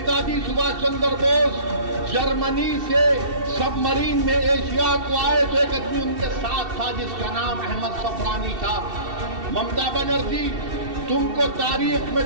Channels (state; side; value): late; left; 2.7 ms